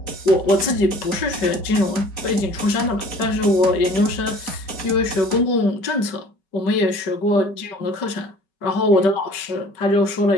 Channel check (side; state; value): right; late; 5.2 ms